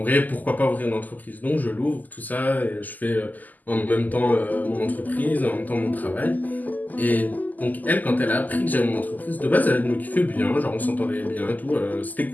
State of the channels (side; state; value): right; late; 0.082 ms